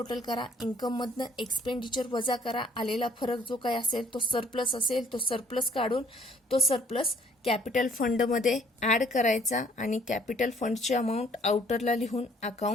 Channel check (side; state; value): both; normal; correlation 0.61